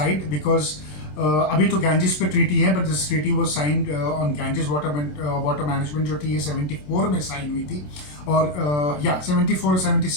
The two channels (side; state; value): right; late; 27 ms